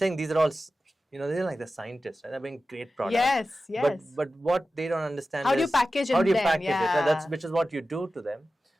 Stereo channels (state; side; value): normal; both; correlation 0.94